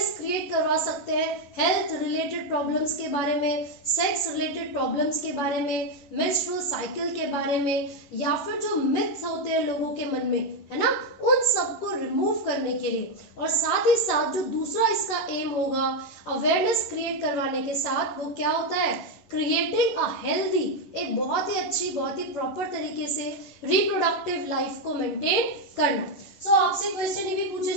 क्रिएट करवा सकते हैं हेल्थ रिलेटेड प्रॉब्लम्स के बारे में, सेक्स रिलेटेड प्रॉब्लम्स के बारे में, मेंस्ट्रुअल साइकिल के बारे में, या फिर जो मिथ्स होते हैं लोगों के मन में, है ना, उन सबको रिमूव करने के लिए. और साथ ही साथ जो दूसरा इसका एम होगा अवेयरनेस क्रिएट करवाने के साथ, वो क्या होता है, क्रिएटिंग अ हेल्दी, एक बहुत ही अच्छी, बहुत ही प्रॉपर तरीके से रिप्रोडक्टिव लाइफ को मेंटेन करना. सो आपसे क्वेश्चन ये भी पूछे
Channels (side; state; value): right; late; 11 ms